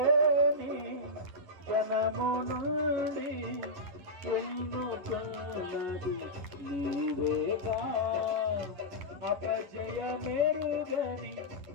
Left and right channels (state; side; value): late; left; 11 ms